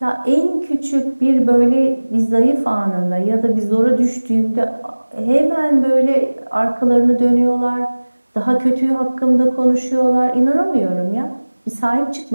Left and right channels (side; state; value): both; inverted; correlation -1.00